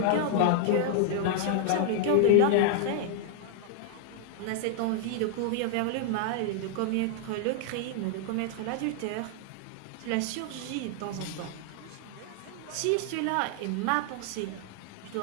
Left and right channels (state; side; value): different; both; correlation -0.01